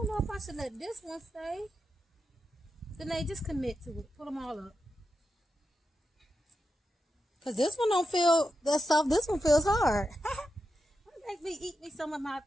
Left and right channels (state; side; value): normal; both; correlation 0.87